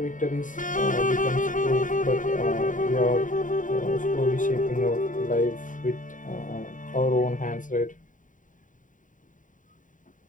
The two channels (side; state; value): right; late; 0.38 ms